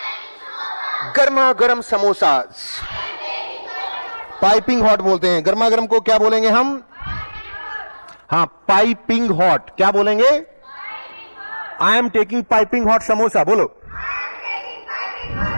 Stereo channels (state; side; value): inverted; both; correlation -1.00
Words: गर्मा गर्म समोसाज। पाइपिंग हॉट बोलते हैं। गर्मा गर्म को क्या बोलेंगे हम? हाँ, पाइपिंग हॉट। क्या बोलेंगे? I am taking piping hot samosa. बोलो।